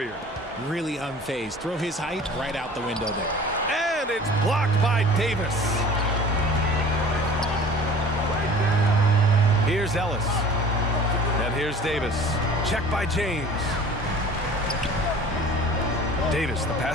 Really unfazed. Throw his height right out the window there. And it's blocked by Davis. Here's Ellis. And here's Davis. Check by James. Davis, the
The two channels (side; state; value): both; normal; correlation 0.44